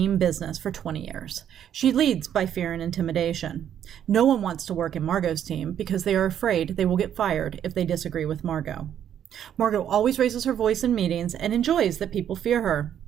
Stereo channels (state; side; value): quieter; left; 9.8 dB